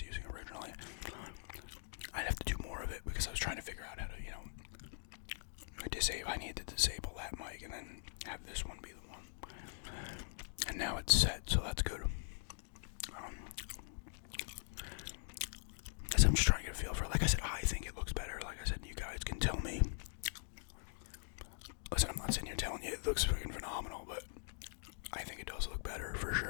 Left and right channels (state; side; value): silent; right; digital silence